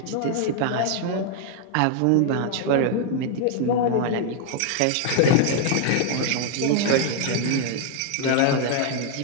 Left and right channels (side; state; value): both; different; correlation 0.00